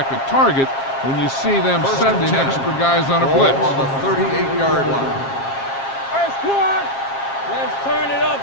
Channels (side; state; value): right; late; 7.4 ms